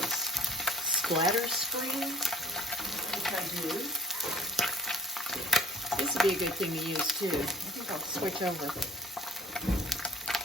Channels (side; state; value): both; normal; correlation 0.52